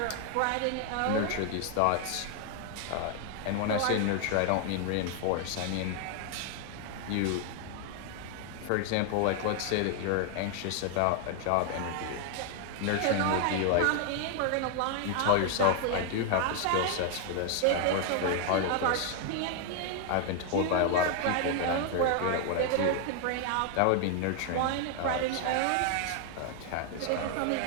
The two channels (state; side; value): different; both; correlation 0.00